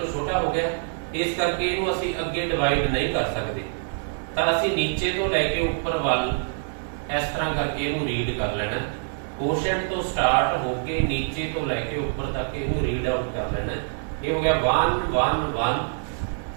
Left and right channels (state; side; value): silent; left; 57 dB below the other